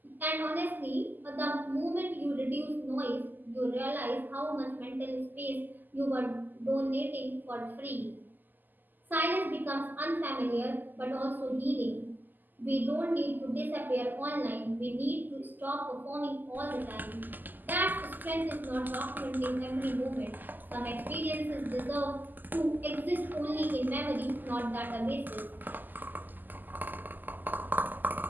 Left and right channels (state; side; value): late; left; 0.087 ms